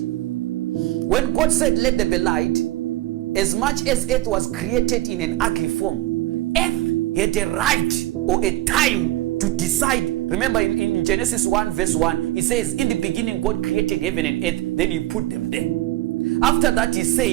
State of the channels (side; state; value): left; quieter; 16.3 dB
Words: When God said, let there be light, as much as earth was created in an ugly form, earth had a right or a time to decide. Remember in Genesis 1 verse 1, it says, in the beginning God created heaven and earth, then he put them there. After that he